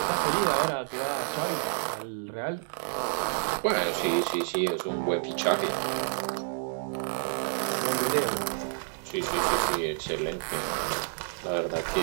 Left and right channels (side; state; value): left; silent; digital silence